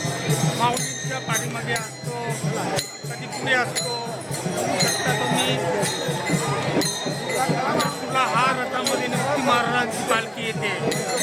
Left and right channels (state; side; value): identical; both; correlation 1.00